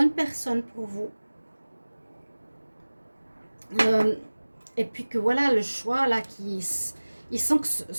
personne pour vous. Et puis que voilà, le choix, là, il sent que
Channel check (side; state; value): both; inverted; correlation -1.00